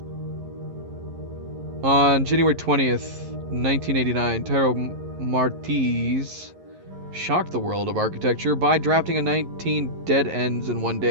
On January 20th, 1989, Taro Martiz shocked the world of architecture by drafting a 19 dead ends in one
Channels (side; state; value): left; late; 11 ms